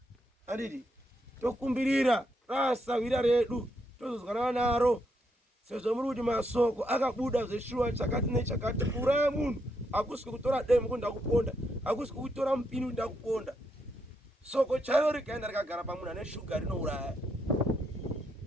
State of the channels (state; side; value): normal; both; correlation 0.79